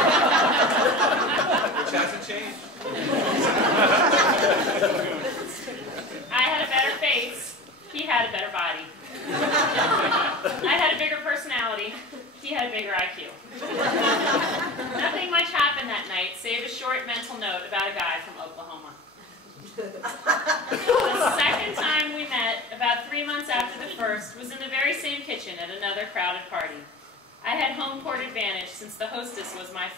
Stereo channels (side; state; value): both; normal; correlation 0.33